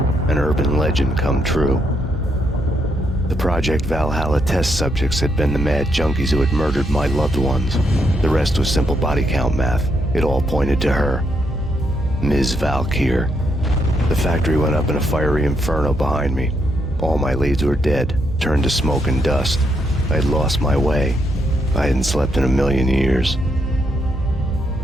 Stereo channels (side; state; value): both; normal; correlation 0.77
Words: An urban legend come true. The Project Valhalla test subjects had been the mad junkies who had murdered my loved ones. The rest was simple body count math. It all pointed to her. Ms. Valkyr. The factory went up in a fiery inferno behind me. All my leads were dead, turned to smoke and dust. I had lost my way. I hadn't slept in a million years.